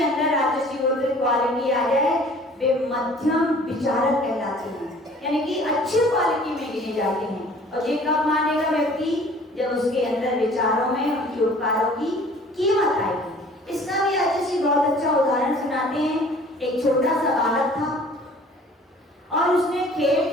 अंदर राजसी क्वालिटी आ जाए वे मध्यम विचारक कहलाते हैं, यानी कि अच्छी क्वालिटी में गिने जाते हैं। और ये कब मानेगा व्यक्ति? जब उसके अंदर विचारों में उनके उपकारों की कीमत आएगी। इसका भी राजसी बहुत अच्छा उदाहरण सुनाते हैं। एक छोटा सा बालक था और उसने खेल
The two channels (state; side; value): normal; both; correlation 0.51